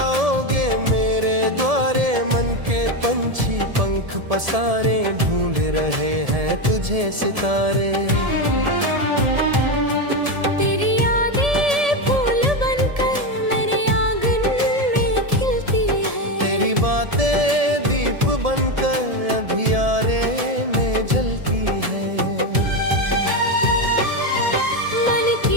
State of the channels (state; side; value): late; left; 1.7 ms